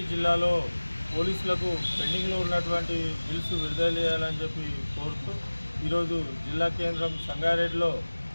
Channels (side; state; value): both; inverted; correlation -1.00